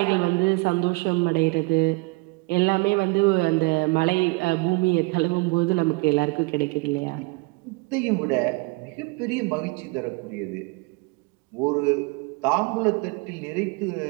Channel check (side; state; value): left; quieter; 27.9 dB